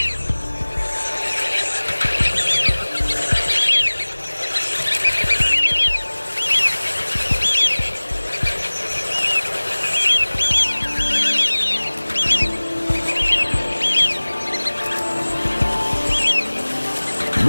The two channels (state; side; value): inverted; both; correlation -1.00